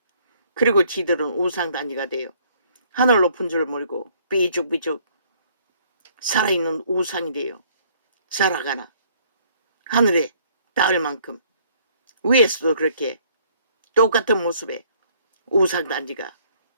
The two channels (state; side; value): inverted; both; correlation -0.61